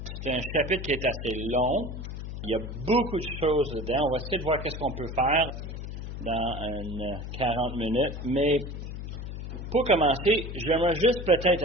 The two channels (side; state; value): left; noise; hum, 7 dB below the sound